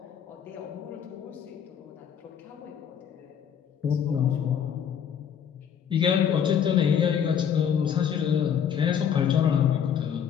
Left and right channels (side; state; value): right; quieter; 8.3 dB